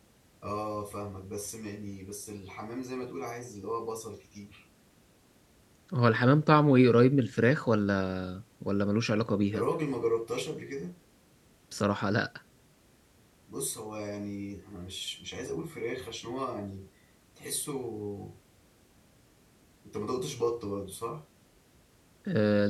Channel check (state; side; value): identical; both; correlation 1.00